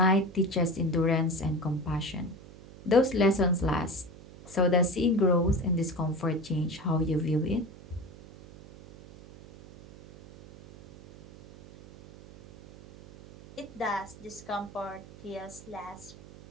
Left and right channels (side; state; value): right; noise; hum, 19 dB below the sound